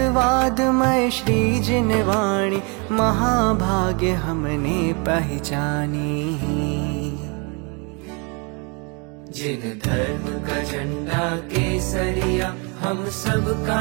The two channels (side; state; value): left; quieter; 32.3 dB